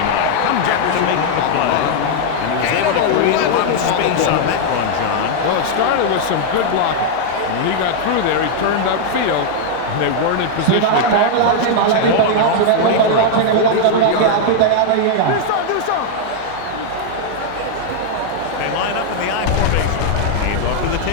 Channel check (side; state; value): both; different; correlation 0.00